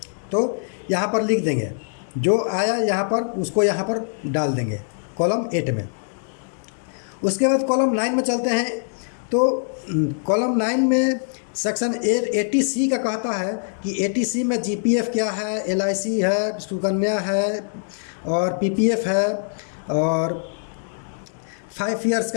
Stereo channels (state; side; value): silent; right; digital silence